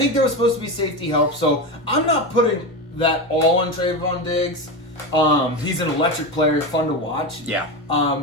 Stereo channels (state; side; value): normal; both; correlation 0.19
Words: there was supposed to be safety help, so I'm not putting that all on Trayvon Diggs. He's an electric player, fun to watch. Yeah.